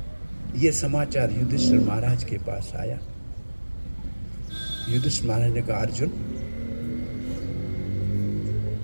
यह समाचार युधिष्ठिर महाराज के पास आया। युधिष्ठिर महाराज ने कहा अर्जुन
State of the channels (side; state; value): both; inverted; correlation -1.00